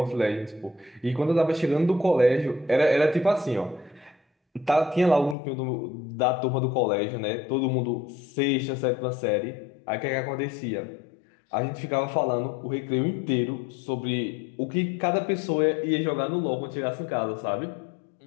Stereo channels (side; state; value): right; drops out; at 5.4 s